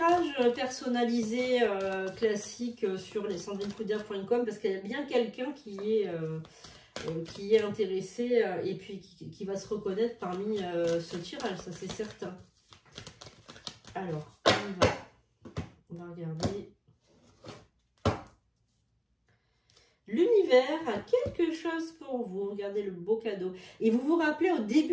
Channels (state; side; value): identical; both; correlation 1.00